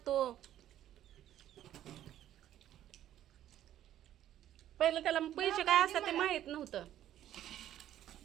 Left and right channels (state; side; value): quieter; left; 11.9 dB